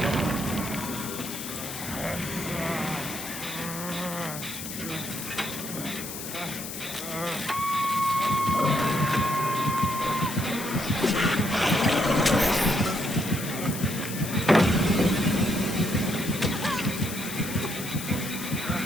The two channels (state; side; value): noise; left; hiss, 8 dB below the sound